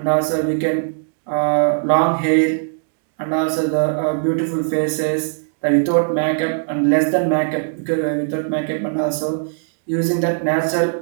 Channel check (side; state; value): left; silent; digital silence